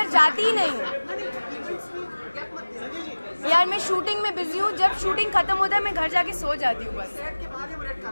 जाती ही नहीं हूँ यार. मैं शूटिंग में बिजी हूँ. जब शूटिंग खत्म होता है मैं घर जाके सो जाती हूँ बस.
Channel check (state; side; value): inverted; both; correlation -1.00